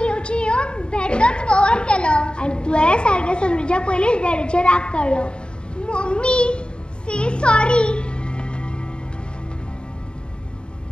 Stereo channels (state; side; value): late; right; 0.052 ms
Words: येवन भेटच कवर केलो आनी तुवें सारकें समजुच्या पयलींच डॅडीचेर राग काडलो. मम्मी, से सॉरी.